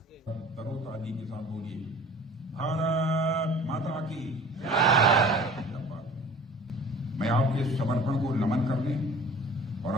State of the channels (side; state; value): both; normal; correlation 0.45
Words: तरोताजी के साथ बोलिए, भारत माता की मैं आपके समर्पण को नमन करने और